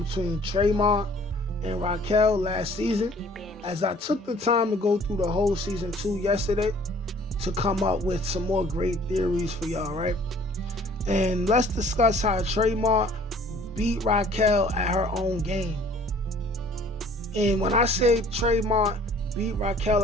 between Traymont and Raquel last season, as I took the time to go through the whole Season 2 yesterday to come up with some more great theories for y'all, right? And let's discuss how Traymont beat Raquel at her own game. And when I say Traymont beat Raquel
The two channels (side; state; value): both; normal; correlation 0.54